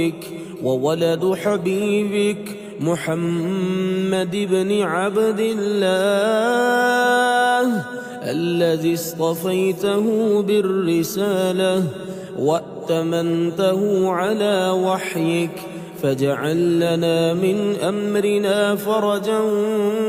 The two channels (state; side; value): identical; both; correlation 1.00